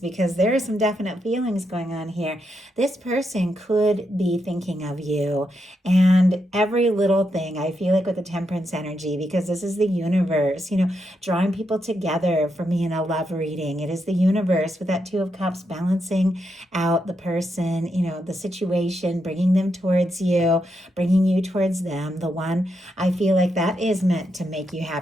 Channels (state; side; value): normal; both; correlation 0.82